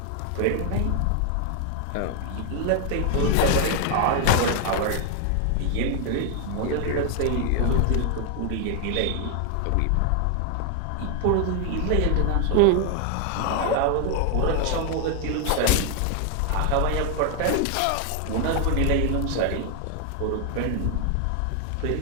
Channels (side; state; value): both; different; correlation 0.00